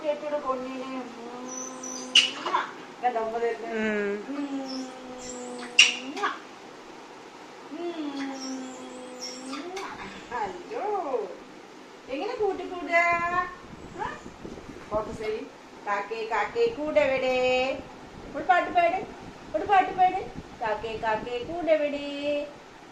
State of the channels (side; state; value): both; identical; correlation 1.00